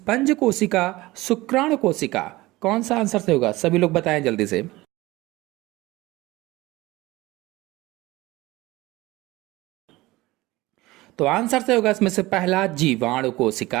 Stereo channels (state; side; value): quieter; left; 19.5 dB